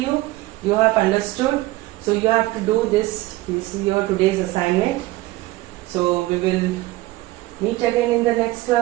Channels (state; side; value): quieter; left; 18.5 dB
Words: You have understood. So you have to do this. This is your today's assignment. So we will meet again in the next